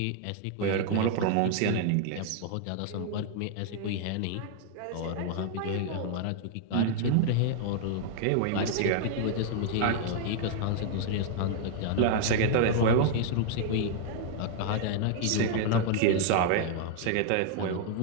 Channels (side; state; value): both; different; correlation 0.00